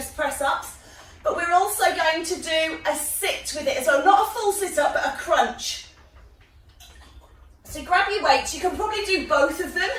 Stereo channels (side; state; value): both; identical; correlation 1.00